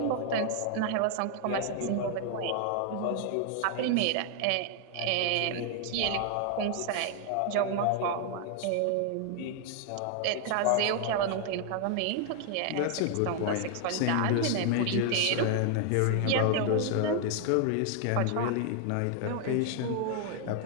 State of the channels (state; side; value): different; both; correlation 0.00